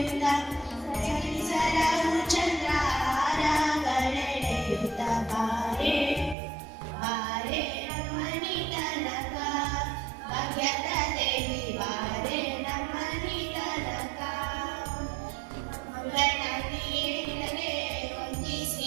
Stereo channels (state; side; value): drops out; left; at 6.4 s